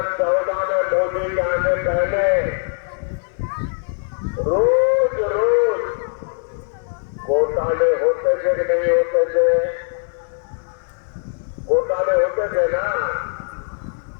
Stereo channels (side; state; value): right; silent; 65 dB below the other